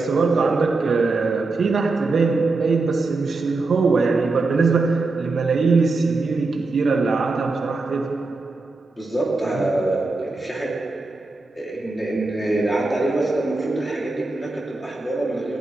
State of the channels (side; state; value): left; quieter; 3.5 dB